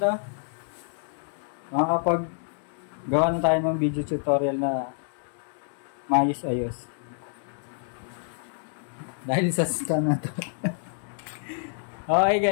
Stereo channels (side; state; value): right; silent; digital silence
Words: Makakapag gawa na tayo ng video tutorial na maayos-ayos. Dahil sa stand na to. Okay